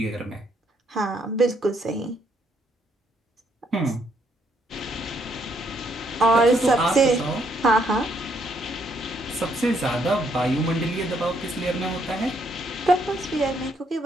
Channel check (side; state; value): both; normal; correlation 0.72